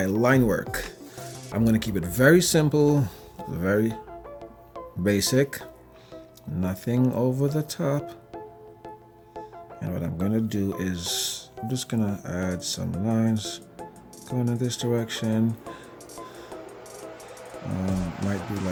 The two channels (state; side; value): identical; both; correlation 1.00